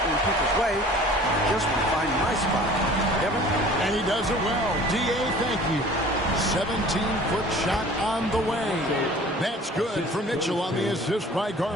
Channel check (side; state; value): both; normal; correlation 0.47